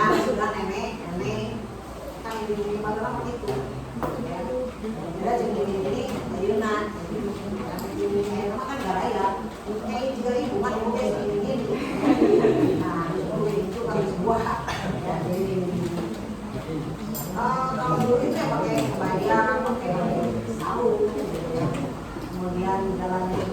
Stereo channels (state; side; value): identical; both; correlation 1.00